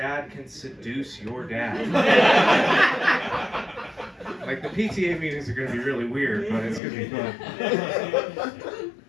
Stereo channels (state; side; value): drops out; right; at 6.8 s